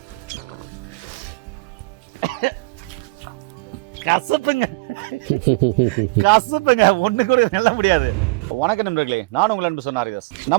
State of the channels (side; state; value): left; quieter; 26.5 dB